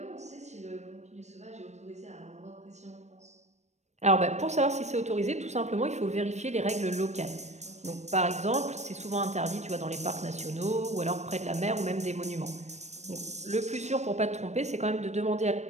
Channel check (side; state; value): left; late; 0.33 ms